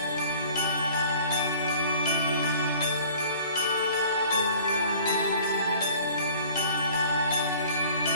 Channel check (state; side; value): inverted; both; correlation -0.48